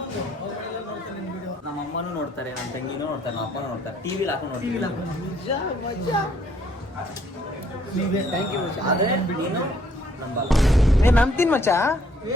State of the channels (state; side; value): normal; both; correlation 0.64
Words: ನಮ್ಮ ಅಮ್ಮನೂ ನೋಡ್ತಾರೆ, ನನ್ನ ತಂಗಿನೂ ನೋಡ್ತಾರೆ, ನಮ್ಮ ಅಪ್ಪನೂ ನೋಡ್ತಾರೆ, ಟಿವಿಲಿ ಹಾಕೊಂಡು ನೋಡ್ತೀವಿ. ಥ್ಯಾಂಕ್ ಯು ಮಚ್ಚ. ಆದ್ರೆ ನೀನು ನಂಬಲ್ಲ. ನಂಬ್ತೀನಿ ಮಚ್ಚ.